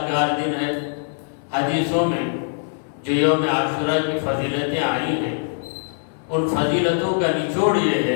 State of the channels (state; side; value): silent; right; 64 dB below the other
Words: دن ہے۔ حدیثوں میں جو یوم عاشوراء کی فضیلتیں آئی ہیں، ان فضیلتوں کا نچوڑ یہ